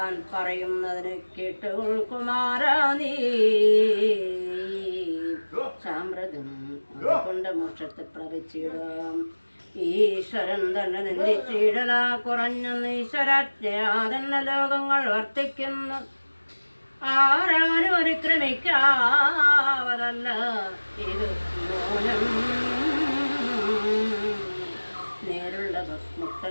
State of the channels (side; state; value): both; inverted; correlation -1.00